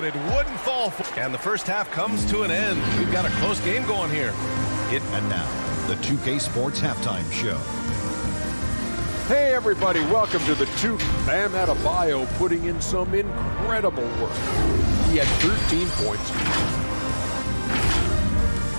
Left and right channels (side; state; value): both; inverted; correlation -1.00